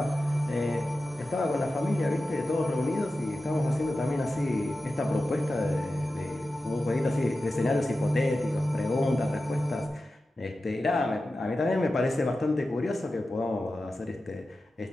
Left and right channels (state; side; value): normal; both; correlation 0.93